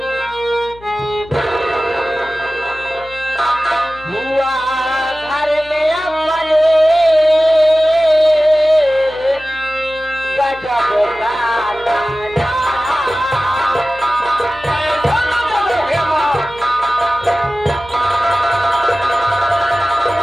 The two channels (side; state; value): left; noise; hum, 22 dB below the sound